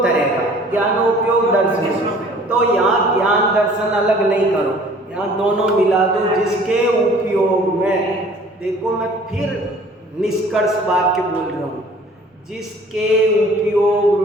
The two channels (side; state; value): both; normal; correlation 0.52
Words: तरह का, ज्ञान उपयोग दर्शन। तो यहाँ ज्ञान दर्शन अलग नहीं करो, यहाँ दोनों मिला दो, जिसके उपयोग में। देखो मैं फिर निष्कर्ष वाक्य बोल रहा हूँ, जिसके